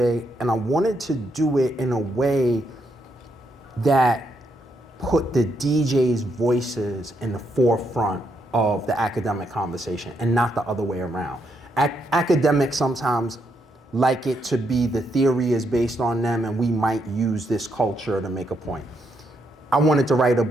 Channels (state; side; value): normal; both; correlation 0.78